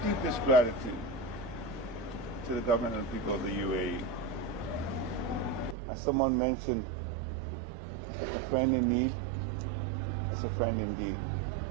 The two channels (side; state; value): left; drops out; at 5.8 s